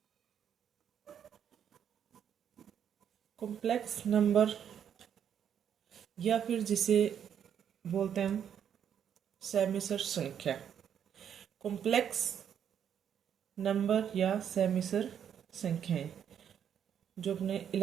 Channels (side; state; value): left; quieter; 8.8 dB